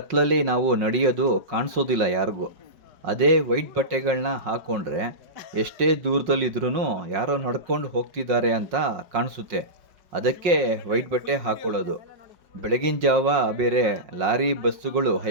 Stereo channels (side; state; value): left; late; 5.5 ms